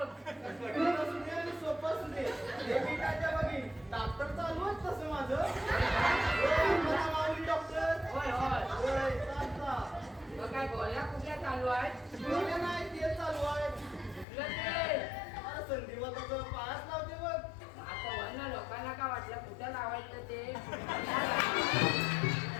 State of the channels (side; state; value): right; drops out; at 14.2 s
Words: कठीण असू दे आणि सोपं असू दे हे मी काय त्या बघी डॉक्टर चालू आहे तसं माझं होय, मला माऊली डॉक्टर होय होय होय, चालता. मग काय गोळ्या कुठल्या चालू आहेत गोळ्या नाही ते चालू आहे कुठलं ते अरे संधिवाताचं पायाच लावते बघ आता वरनं लोकांना काय वाटलं कुठं लावायचं ते